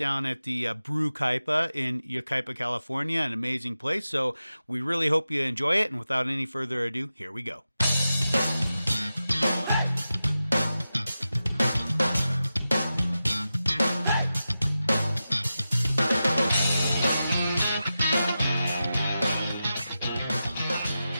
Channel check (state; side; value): inverted; both; correlation -0.92